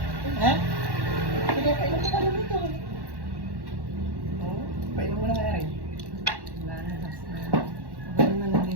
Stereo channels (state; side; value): late; left; 1.1 ms